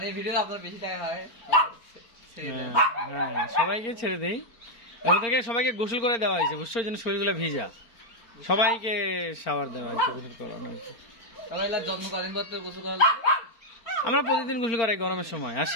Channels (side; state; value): right; late; 4.4 ms